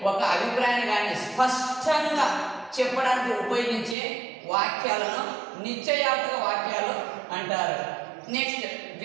ఒక అభిప్రాయాన్ని కానీ స్పష్టంగా చెప్పడానికి ఉపయోగించే వాక్యాలను నిశ్చయార్థక వాక్యాలు అంటారు. నెక్స్ట్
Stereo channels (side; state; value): left; drops out; at 4.0 s